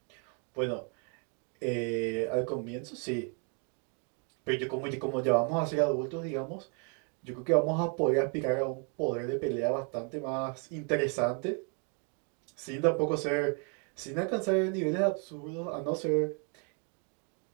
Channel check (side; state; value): left; quieter; 39.1 dB